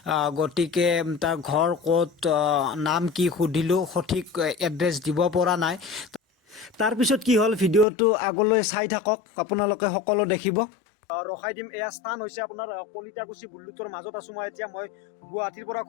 গতিকে তাৰ ঘৰ ক'ত, নাম কি সুধিলোঁ, সঠিক এড্ৰেছ দিব পৰা নাই। তাৰপিছত কি হ'ল, ভিডিঅ'টো আগলৈ চাই থাকক, আপোনালোকে সকলো দেখিব। ৰখাই দিম। এয়া স্থান হৈছে আপোনাৰ কলিতাকুছি বুল্লুথৰ মাজত আছোঁ মই এতিয়া। মই গুৱাহাটীৰ পৰা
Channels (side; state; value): right; drops out; at 7.9 s